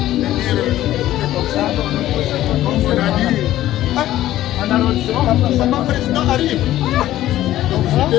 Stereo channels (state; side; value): quieter; right; 14.0 dB